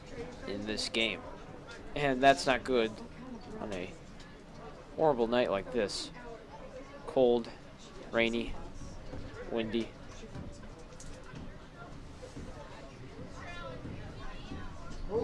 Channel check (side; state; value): both; identical; correlation 1.00